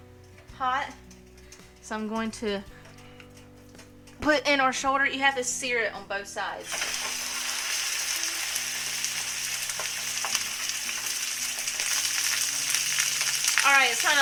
hot. So I'm going to put in our shoulder. You have to sear it on both sides. Alright, it's kind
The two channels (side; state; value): both; identical; correlation 1.00